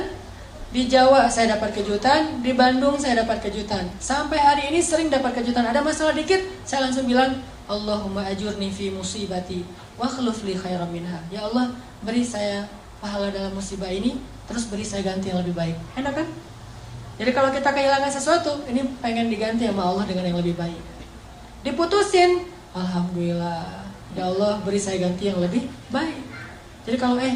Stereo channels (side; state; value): both; identical; correlation 1.00